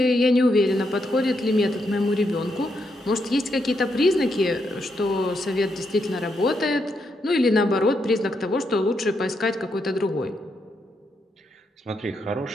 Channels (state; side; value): normal; both; correlation 0.80